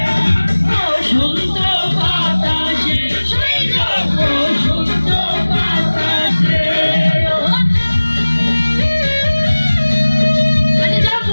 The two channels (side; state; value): both; inverted; correlation -1.00